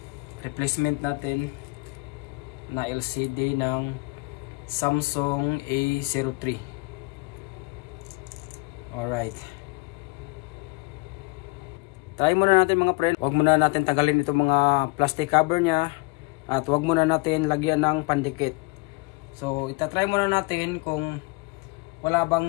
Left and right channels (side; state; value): right; quieter; 27.0 dB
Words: replacement natin na LCD ng Samsung A03. Alright. Try muna natin mga friend. Huwag muna natin tagalin itong mga plastic cover nya. At huwag muna natin lagyan ng pandikit. So, itatry muna natin kung wala